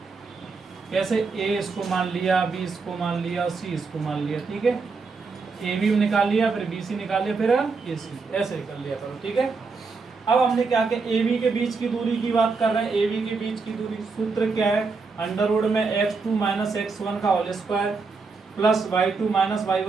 कैसे ए इसको मान लिया, बी इसको मान लिया और सी इसको मान लिया, ठीक है। ए बी निकाल लिया, फिर बी सी निकाल लिया, फिर ए सी, ऐसे कर लिया करो, ठीक है। अब हमने क्या किया, ए बी के बीच की दूरी की बात कर रहे हैं। ए बी के बीच की दूरी सूत्र क्या है, अंडर रूट में x2 - x1 का whole square plus y2 -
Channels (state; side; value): quieter; left; 4.5 dB